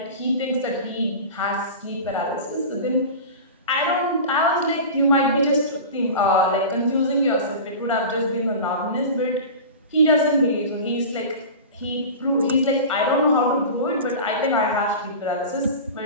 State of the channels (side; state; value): both; inverted; correlation -0.32